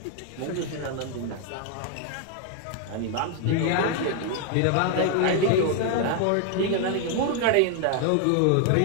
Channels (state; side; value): different; both; correlation 0.01